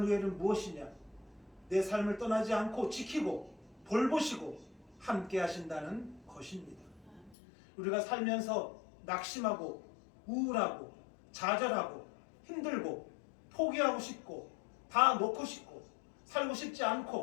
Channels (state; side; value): drops out; right; at 7.4 s